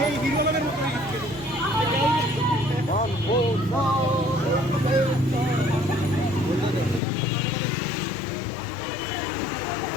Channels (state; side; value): drops out; right; at 7.0 s